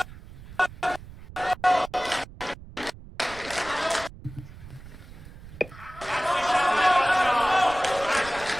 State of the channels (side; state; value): right; noise; rumble, 16 dB below the sound